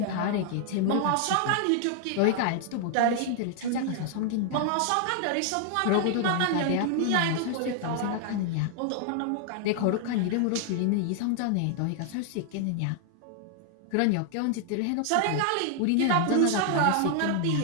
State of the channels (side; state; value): both; different; correlation 0.00